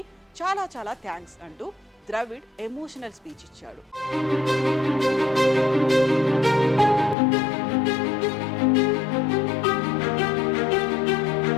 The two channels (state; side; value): drops out; right; at 7.2 s